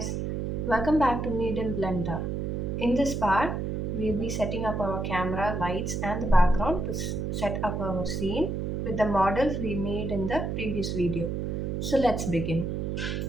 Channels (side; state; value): right; noise; hum, 2 dB below the sound